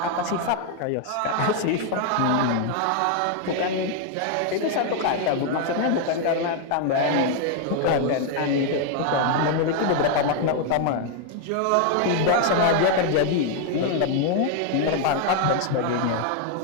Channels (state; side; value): different; both; correlation 0.00